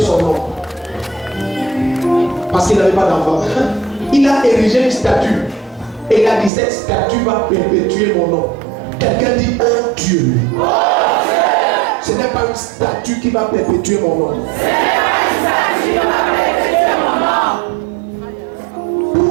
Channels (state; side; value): drops out; left; at 6.5 s